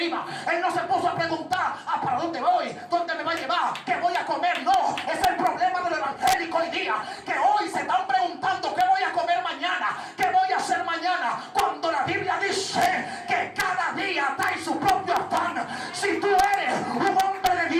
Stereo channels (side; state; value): both; identical; correlation 1.00